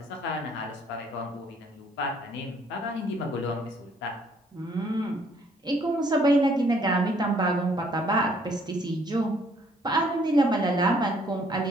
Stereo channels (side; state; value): both; normal; correlation 0.64